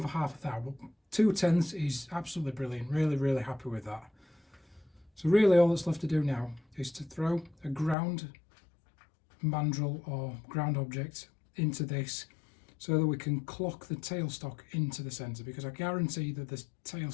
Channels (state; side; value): drops out; right; at 8.0 s